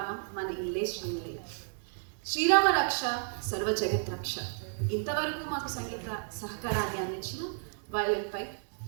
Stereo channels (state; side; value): silent; left; digital silence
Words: మన ఇల్లే శ్రీనిలయం. శ్రీరామ రక్ష సర్వ జగత్ రక్ష. ఇంతవరకు మాకు సంగీత సహకారాన్ని అందించిన వయలిన్పై